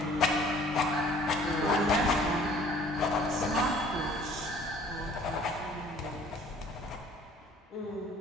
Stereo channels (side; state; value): both; normal; correlation 0.54